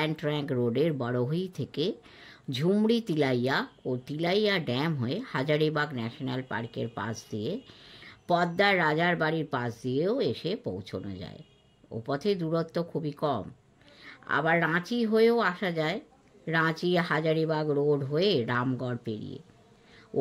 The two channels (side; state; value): both; identical; correlation 1.00